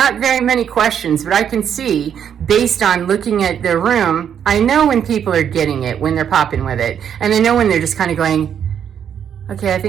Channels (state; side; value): quieter; left; 8.6 dB